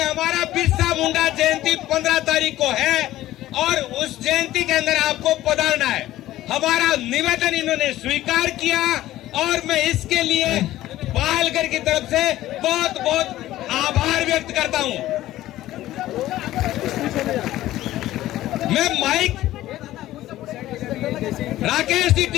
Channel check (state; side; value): quieter; right; 14.9 dB